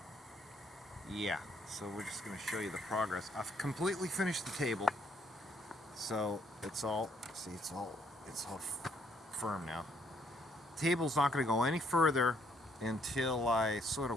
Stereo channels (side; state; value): both; normal; correlation 0.68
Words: yeah, so we're just going to show you the progress. I've completely finished the table, so it's all firm now. The table's not going to go any further until I sort